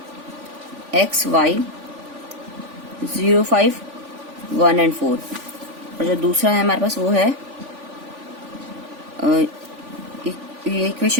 x y 0 5 1 एंड 4, और जो दूसरा है हमारे पास वो है ये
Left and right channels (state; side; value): late; left; 3.5 ms